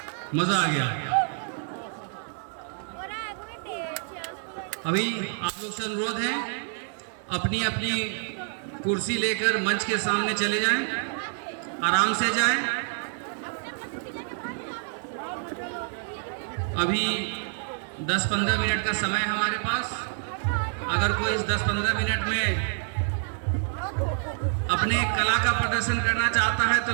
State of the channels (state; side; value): silent; left; 60 dB below the other